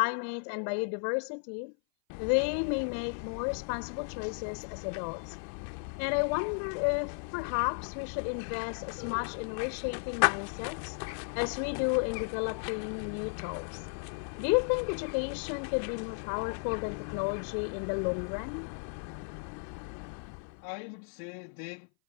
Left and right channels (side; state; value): right; silent; 55 dB below the other